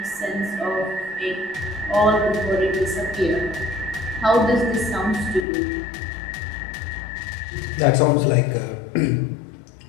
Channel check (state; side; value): drops out; right; at 5.5 s